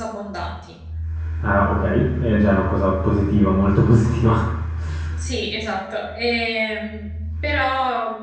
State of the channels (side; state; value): both; identical; correlation 1.00